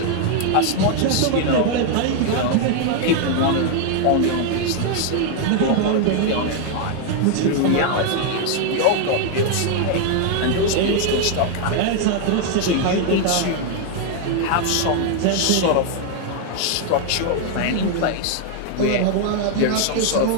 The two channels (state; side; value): different; both; correlation 0.00